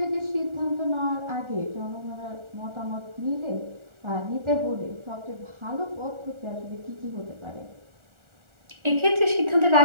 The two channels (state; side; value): late; left; 1.4 ms